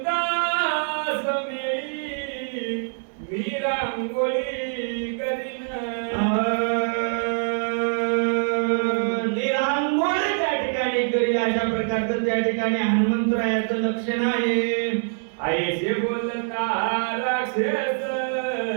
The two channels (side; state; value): left; silent; digital silence